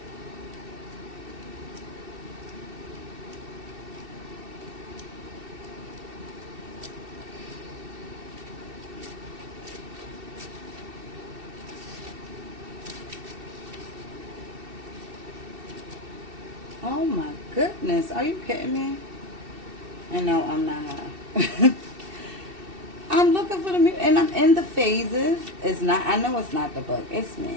Oh my goodness, are you kidding me? And no, I'm not. I'm looking for the music, and I'm in the phases. It's not, I know it's not the book. It's me,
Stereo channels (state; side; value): late; left; 2.7 ms